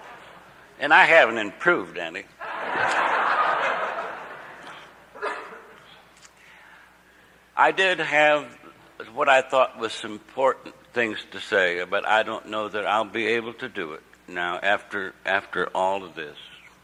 And I haven't improved any. I did have what I thought was some important things to say, but I don't know that I'll be able to do it now after all of this.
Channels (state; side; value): identical; both; correlation 1.00